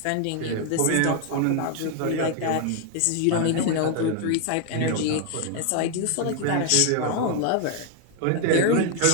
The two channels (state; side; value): different; both; correlation 0.00